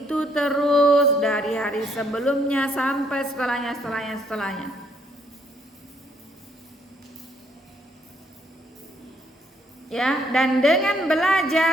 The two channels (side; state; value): both; normal; correlation 0.69